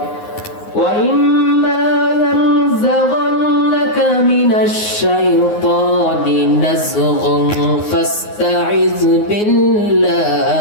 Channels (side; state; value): right; late; 9.6 ms